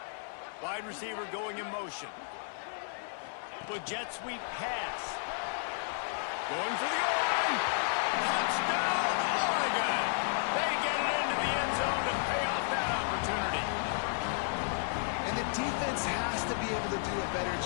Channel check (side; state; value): right; silent; 56 dB below the other